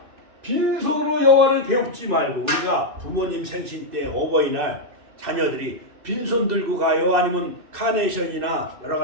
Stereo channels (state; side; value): late; left; 2.6 ms